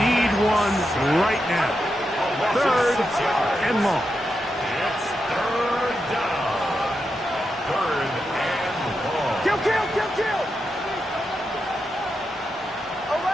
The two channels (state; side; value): normal; both; correlation 0.87